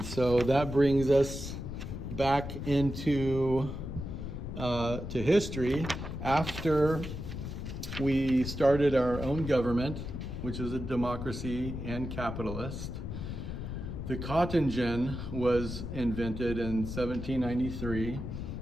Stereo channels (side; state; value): left; noise; rumble, 6 dB below the sound